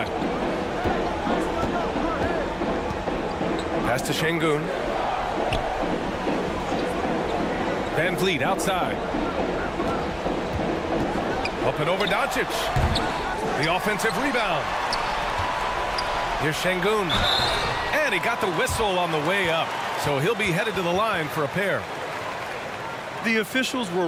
Pass to Şengün. Van Vliet outside. Up and over Doncic. The offensive rebound. Here's Şengün. And he got the whistle on the way up. So he'll be headed to the line for a pair. The officials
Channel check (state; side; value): identical; both; correlation 1.00